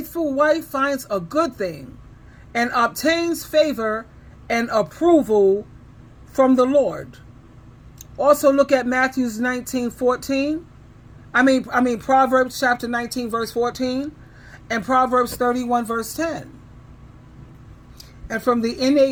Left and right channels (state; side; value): identical; both; correlation 1.00